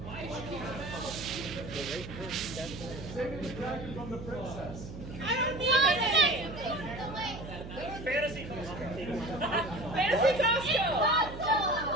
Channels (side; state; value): right; noise; hum, 11 dB below the sound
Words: Saving the dragon from the princess. I don't need anything! Fantasy Costco. Fantasy Costco!